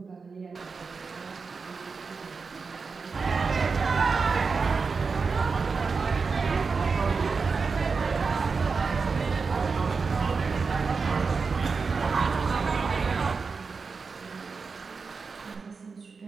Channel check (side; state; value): left; quieter; 4.8 dB